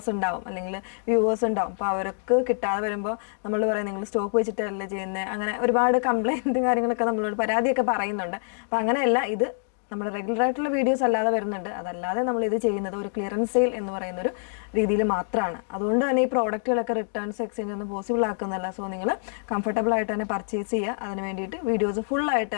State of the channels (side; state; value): right; silent; digital silence